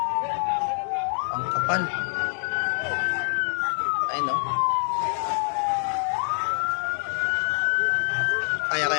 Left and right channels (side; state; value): right; silent; 60 dB below the other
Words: Ang kapal. Ay, no?